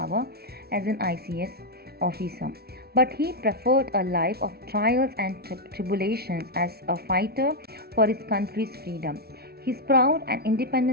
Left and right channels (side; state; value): left; late; 0.45 ms